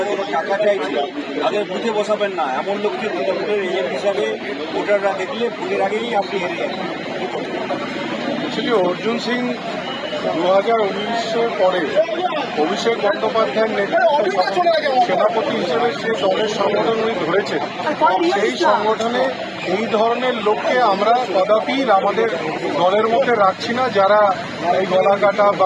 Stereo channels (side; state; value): both; identical; correlation 1.00